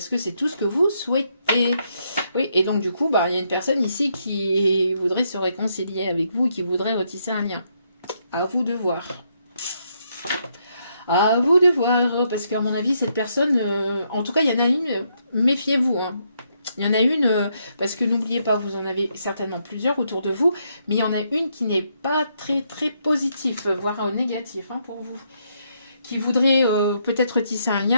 que c'est tout ce que vous souhaitez. Oui, et donc du coup, il y a une personne ici qui voudrait se réconcilier avec vous, qui voudrait retisser un lien. À vous de voir. À vous de voir, parce qu'à mon avis, cette personne, en tout cas, il y en a une, méfiez-vous. Hein. Il y en a une, parce que n'oubliez pas, vous en avez certainement plusieurs autour de vous, mais il y en a une qui n'est pas très très positif, voire négatif hein, pour vous. Qui voudrait peut-être tisser un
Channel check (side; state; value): both; inverted; correlation -0.76